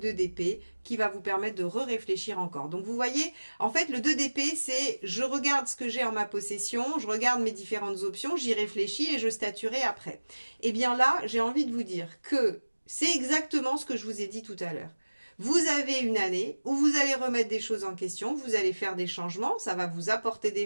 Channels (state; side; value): inverted; both; correlation -1.00